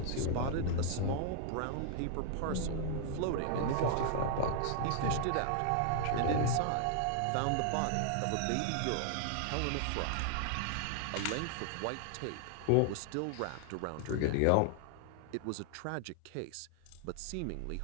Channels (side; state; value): both; different; correlation 0.00